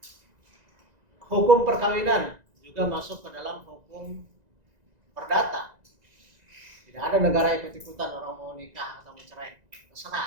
Hukum perkawinan juga masuk ke dalam hukum perdata. Tidak ada negara ikut-ikutan orang mau nikah atau mencerai,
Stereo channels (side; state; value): left; late; 2.0 ms